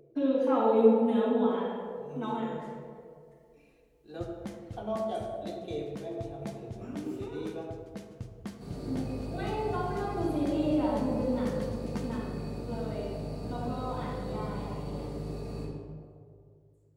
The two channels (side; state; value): both; identical; correlation 1.00